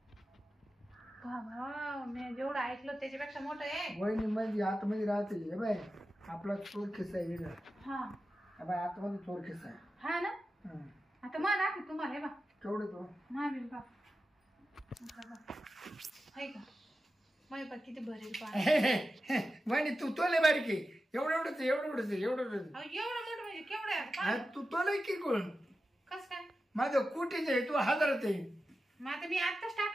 बाबा मी जेवढं ऐकलं त्याच्यापेक्षा मोठं आहे. वहिनी मध्ये आतमध्ये राहते. हे बाय आपला चोर खिस्सा आहे वेगळा. हा हे बाय आतमध्ये चोर खिस्सा आहे. हा ना. हं. आता मला दाखव तुम्हाला हे बा केवढे तो महावीर बा आहे का? माय बा किती भरेल पा. वहिनी तू तोले बारीक आहे. एवढंच एवढंच एवढंच. एवढं मोठं म्हणजे केवढं आहे? हा तू तोले की कोण? कस काय? माझं कुठेच आहे. तू हजारात आहे. मग आता मी आत्ताच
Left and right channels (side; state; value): both; normal; correlation 0.92